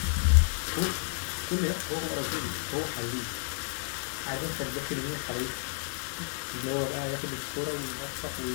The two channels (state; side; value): silent; right; 57 dB below the other